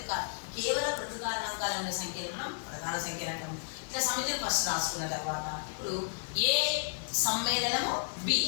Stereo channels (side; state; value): right; silent; digital silence